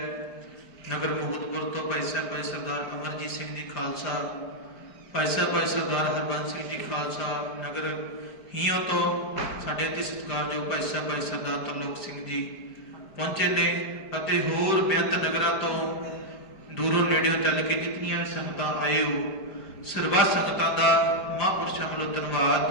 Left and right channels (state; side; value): late; right; 5.0 ms